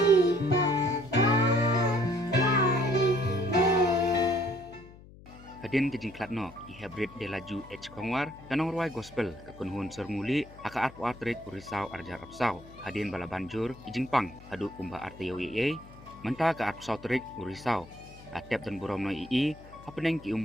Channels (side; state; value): left; noise; hum, 20 dB below the sound